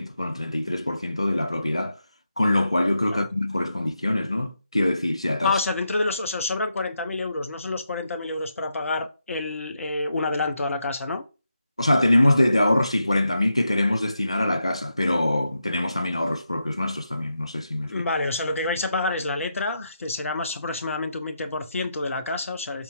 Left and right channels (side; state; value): both; inverted; correlation -0.84